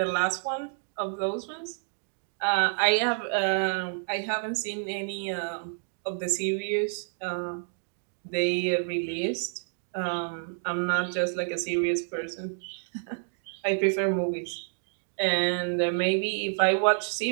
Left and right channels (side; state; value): left; silent; 59 dB below the other